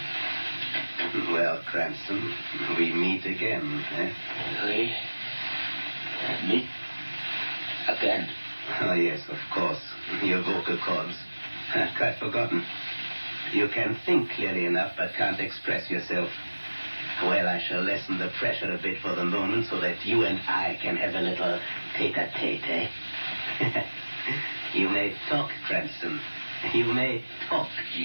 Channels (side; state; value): both; inverted; correlation -1.00